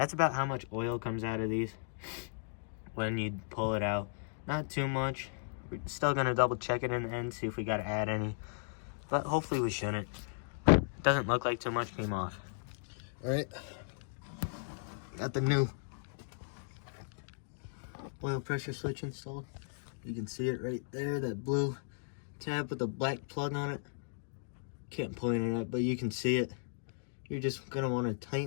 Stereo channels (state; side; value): silent; right; digital silence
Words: about how much oil comes out of these when you pull it out. Not too much. We're still gonna double check it in the end, see if we gotta add any, but hopefully we shouldn't. Doesn't look like too much came off. All right, got the new oil pressure switch installed. You can see it right there, that blue tab with the black plug on it. Can't point it at, but you can see it. You're just gonna want to